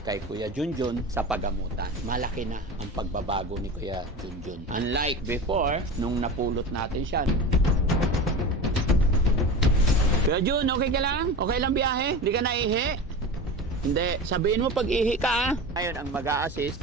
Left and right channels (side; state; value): both; normal; correlation 0.30